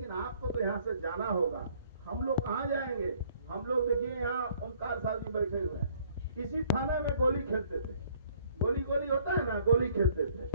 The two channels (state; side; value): inverted; both; correlation -0.59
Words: आपको तो यहाँ से जाना होगा। हम लोग कहाँ जाएंगे? हम लोग देखिए यहाँ ओमकार साहब जी बैठे हुए हैं। इसी थाने में गोली खेलते थे, गोली होता है ना, गोली खेलते